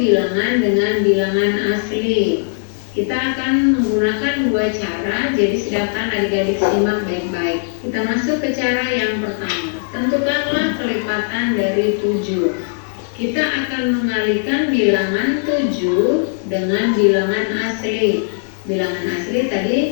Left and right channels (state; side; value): silent; right; digital silence